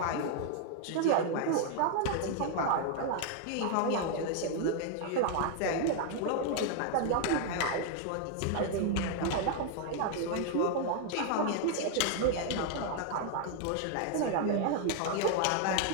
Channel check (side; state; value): both; different; correlation 0.00